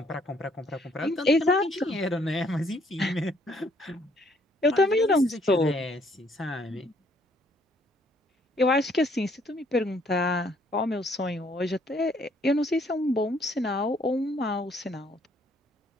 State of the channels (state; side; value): normal; both; correlation 0.66